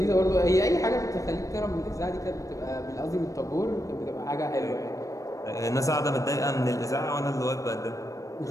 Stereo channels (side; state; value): right; late; 0.16 ms